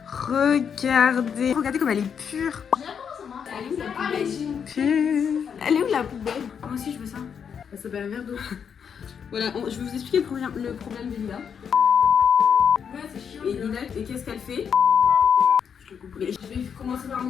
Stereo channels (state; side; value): quieter; right; 7.3 dB